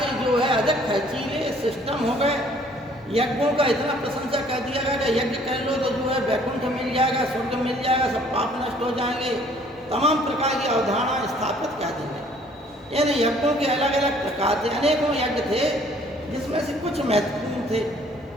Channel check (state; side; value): normal; both; correlation 0.58